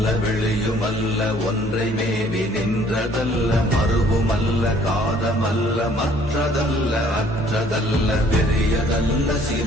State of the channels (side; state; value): both; normal; correlation 0.58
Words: வெளியுமல்ல ஒன்றை மேவி நின்றதல்ல, மறுவுமல்ல காதமல்ல மற்றதல்ல அற்றதல்ல, பெரியதல்ல